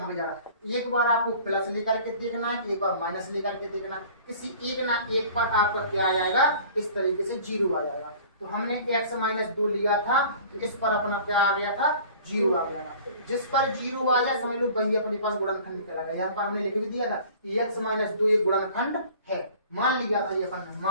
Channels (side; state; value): both; inverted; correlation -0.47